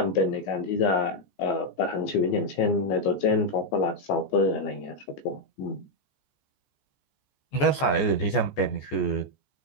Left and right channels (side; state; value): right; late; 14 ms